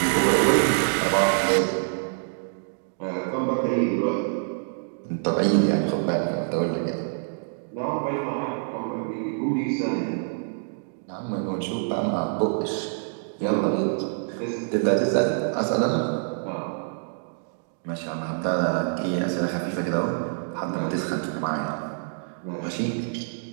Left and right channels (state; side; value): silent; left; digital silence